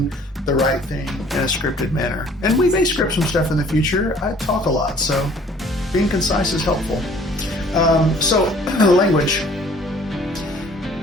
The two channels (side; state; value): both; normal; correlation 0.55